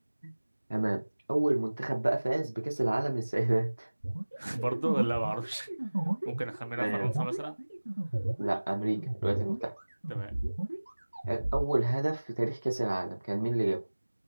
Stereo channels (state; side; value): inverted; both; correlation -1.00